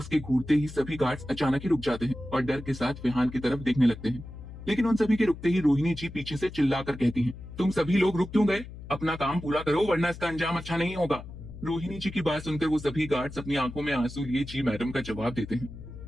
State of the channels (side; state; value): left; noise; hum, 13 dB below the sound